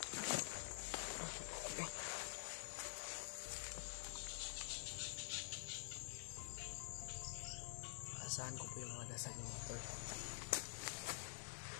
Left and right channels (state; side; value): silent; right; digital silence